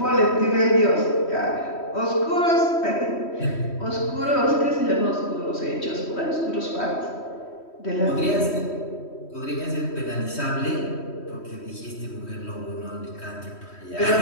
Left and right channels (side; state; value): right; late; 3.1 ms